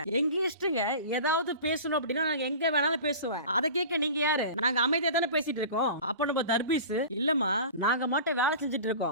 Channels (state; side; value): inverted; both; correlation -0.37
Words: எங்க இஷ்டங்க, ஏதாவது பேசணும் அப்படின்னா நாங்க எங்க வேணாலும் பேசுவேன், அதை கேட்க நீங்க யாரு? நாங்க அமைதியா தானே பேசிட்டு இருக்கோம். அப்ப நம்ம தர்பீஸ், இல்லம்மா நாங்க மட்டும் வேலை செஞ்சுட்டு